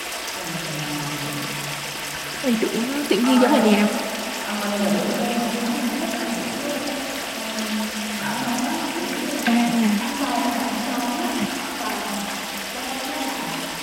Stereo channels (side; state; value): both; identical; correlation 1.00